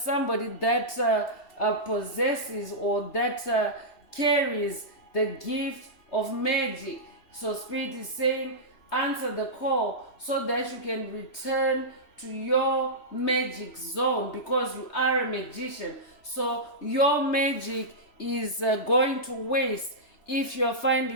that possesses or that carries the gift of magic. So Spirit is saying Answer the call so that you can return to your magic zone, because you are a magician. So your magic is going to waste if you're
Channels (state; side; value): late; right; 3.0 ms